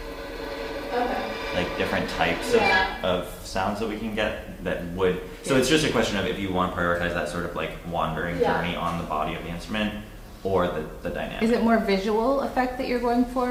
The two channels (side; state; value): both; identical; correlation 1.00